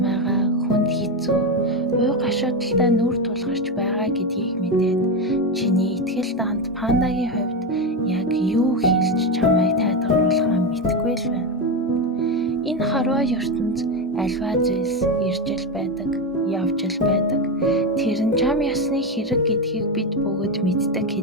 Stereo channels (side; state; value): both; normal; correlation 0.12